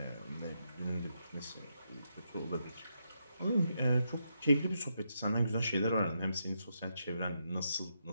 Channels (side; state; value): both; inverted; correlation -0.82